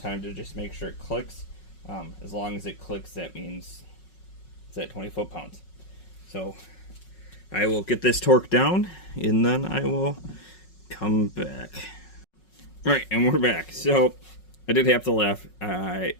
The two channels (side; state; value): right; late; 5.4 ms